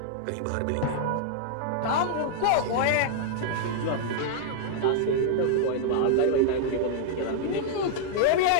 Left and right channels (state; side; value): different; both; correlation -0.01